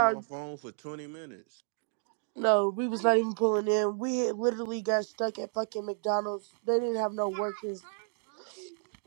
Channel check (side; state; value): left; silent; digital silence